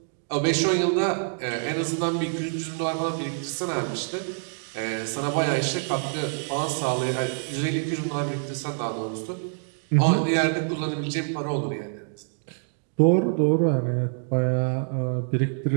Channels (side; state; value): left; silent; 61 dB below the other